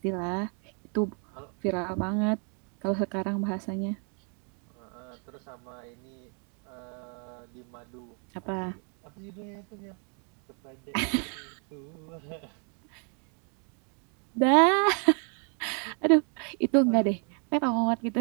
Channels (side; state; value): left; quieter; 39.4 dB